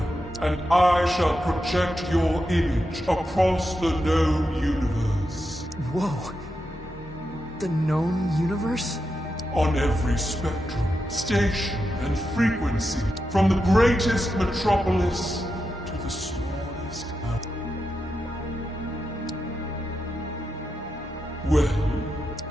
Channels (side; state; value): both; normal; correlation 0.87